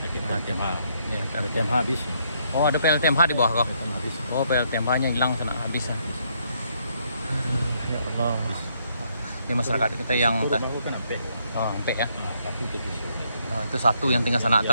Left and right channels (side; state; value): both; inverted; correlation -0.72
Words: TMH. Ya, Ada TMH habis. oh ada PLTMH di bawah kok. TMH habis. Oh PLTMH-nya hilang sana habis. Ya Allah. Ini masyarakat kita yang Itu rumah aku kan Ampe. Sampai ya. Nah, tapi itu tisu. Itu satu yang tinggal sana,